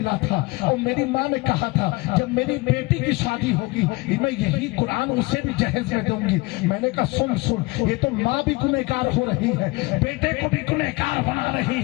تھا اور میری ماں نے کہا تھا جب میری بیٹی کی شادی ہوگی میں یہی قرآن اسے بھی جہیز میں دوں گی۔ میں نے کہا سن یہ تو ماں بھی گنہگار ہو رہی ہے، بیٹے کو بھی گنہگار بنا رہی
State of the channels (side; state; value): right; quieter; 23.9 dB